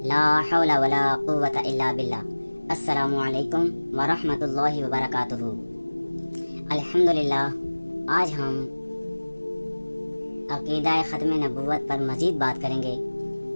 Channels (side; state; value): both; inverted; correlation -1.00